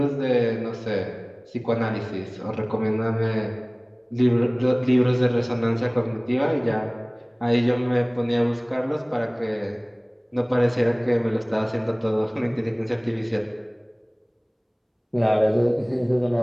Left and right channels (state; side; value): identical; both; correlation 1.00